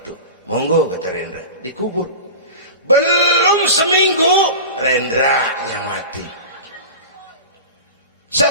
Monggo, kata Rendra, dikubur. Belum seminggu Rendranya mati.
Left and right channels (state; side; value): inverted; both; correlation -0.31